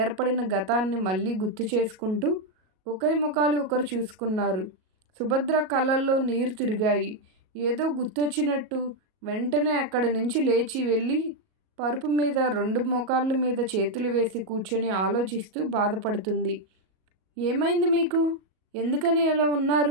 గతాన్ని మళ్ళీ గుర్తు చేసుకుంటూ ఒకరి ముఖాలు ఒకరు చూసుకున్నారు. సుభద్ర కళ్ళల్లో నీరు తిరిగాయి. ఏదో గుర్తొచ్చినట్టు వెంటనే అక్కడి నుంచి లేచి వెళ్ళి పరుపు మీద 2 మోకాళ్ళ మీద చేతులు వేసి కూర్చొని ఆలోచిస్తూ బాధపడుతుంది. ఏమైంది మీకు? ఎందుకని ఎలా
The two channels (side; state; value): left; late; 37 ms